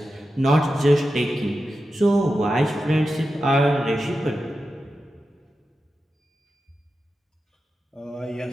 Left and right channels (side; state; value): both; normal; correlation 0.91